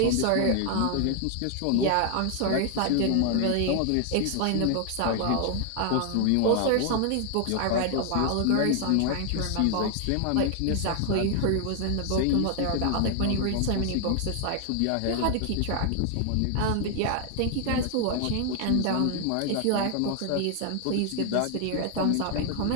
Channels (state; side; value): different; both; correlation 0.00